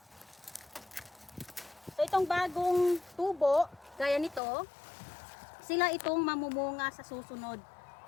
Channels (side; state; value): right; drops out; at 4.4 s